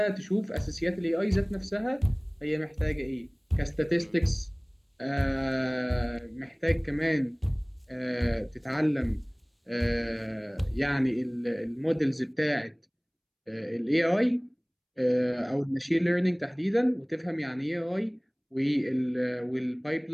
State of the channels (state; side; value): identical; both; correlation 1.00